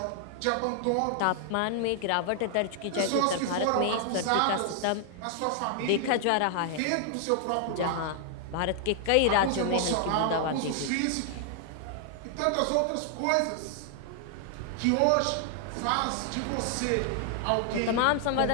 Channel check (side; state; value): both; different; correlation 0.00